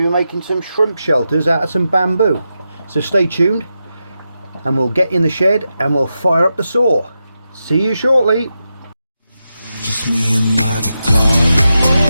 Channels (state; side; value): inverted; both; correlation -0.89